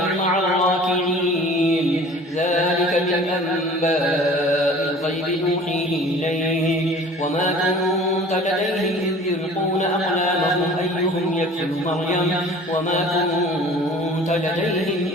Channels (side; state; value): both; normal; correlation 0.45